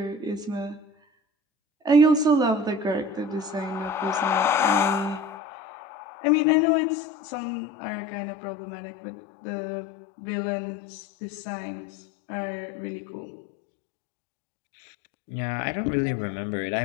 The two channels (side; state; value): right; drops out; at 5.4 s